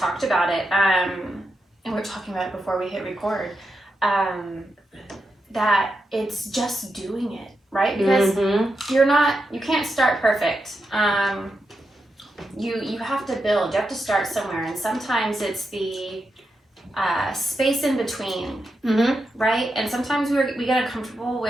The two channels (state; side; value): normal; both; correlation 0.87